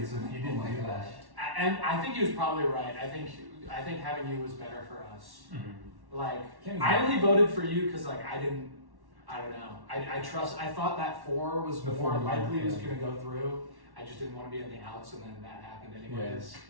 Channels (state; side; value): late; left; 1.1 ms